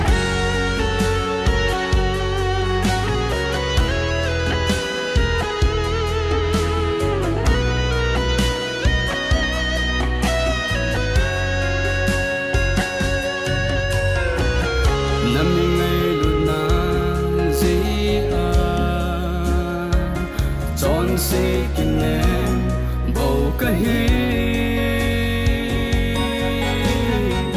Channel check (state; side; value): identical; both; correlation 1.00